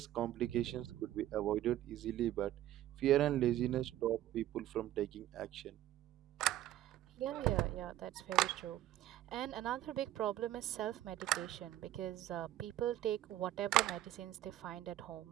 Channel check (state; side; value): quieter; left; 13.5 dB